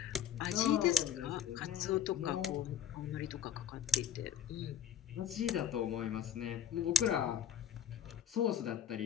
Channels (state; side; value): quieter; right; 8.5 dB